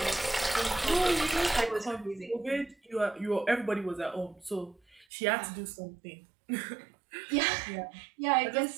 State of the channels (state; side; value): drops out; left; at 5.1 s